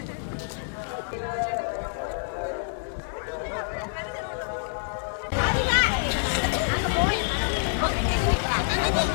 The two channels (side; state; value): right; silent; 60 dB below the other